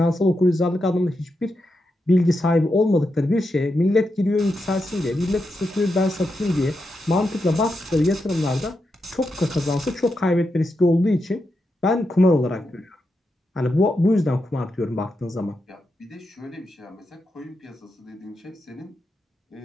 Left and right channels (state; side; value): normal; both; correlation 0.86